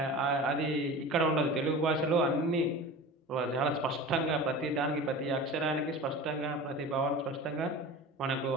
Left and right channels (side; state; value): both; normal; correlation 0.34